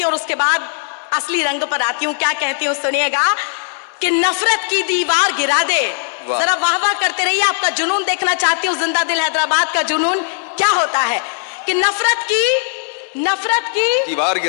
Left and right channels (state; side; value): silent; right; 68 dB below the other